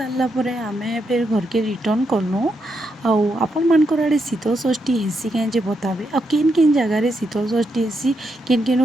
आम फिर घर के रिटर्न कलु आपण मानकर आड़े शीतल षष्ठी हेसी कहीं बताबे आ किन किन जगार शीतल षष्ठी हेसी किन किन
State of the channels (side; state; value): both; normal; correlation 0.81